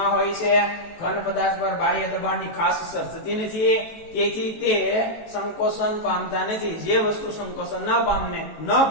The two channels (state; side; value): late; right; 18 ms